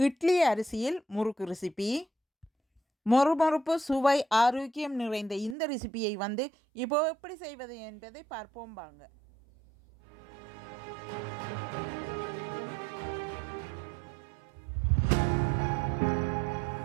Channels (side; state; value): left; drops out; at 5.6 s